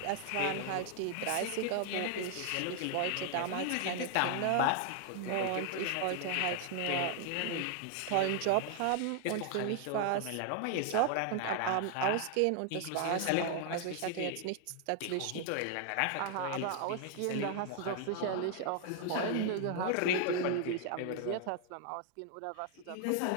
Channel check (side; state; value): both; different; correlation 0.00